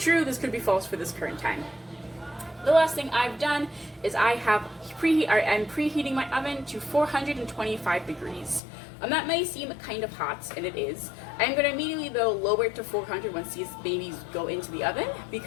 this could be false for this current time. The last thing I've done is I'm preheating my oven to 425 degrees. That may seem kind of hot, and it is. I'm going to immediately, though, lower it to 400 once these babies go into the oven,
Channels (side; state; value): right; drops out; at 8.6 s